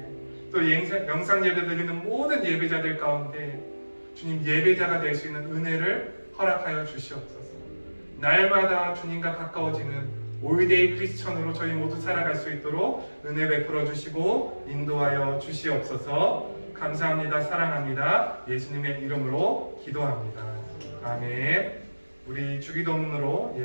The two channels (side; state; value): both; inverted; correlation -1.00